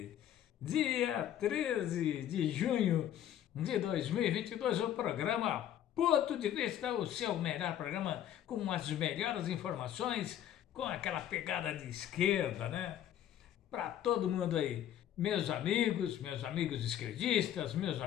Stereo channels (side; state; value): right; quieter; 11.0 dB